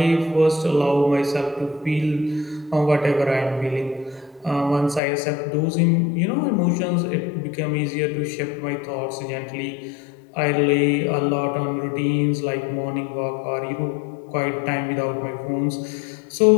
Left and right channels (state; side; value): drops out; right; at 5.0 s